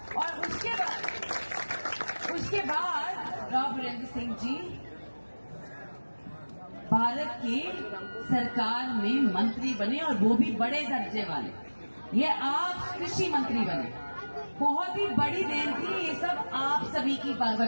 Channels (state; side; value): inverted; both; correlation -1.00